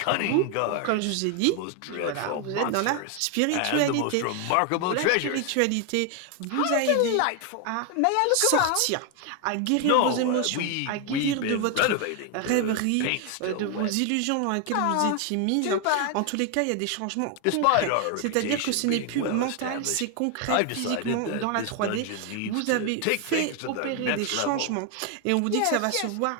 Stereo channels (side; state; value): both; different; correlation 0.01